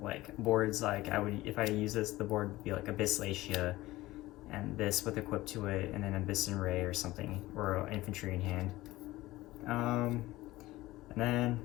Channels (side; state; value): right; quieter; 17.9 dB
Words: like boards, like if I use this, the board would be like Abysslacia, and this with equip to it, and then Abyssin Ray or something, or Infantry in hand. And then